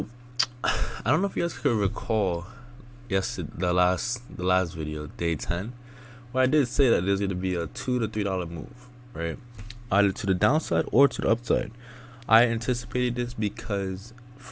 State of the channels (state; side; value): identical; both; correlation 1.00